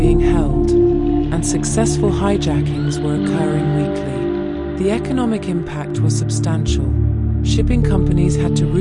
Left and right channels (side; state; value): both; identical; correlation 1.00